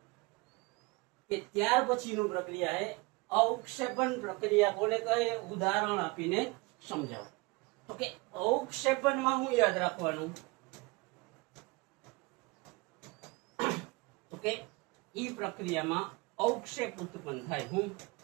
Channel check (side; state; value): left; quieter; 25.6 dB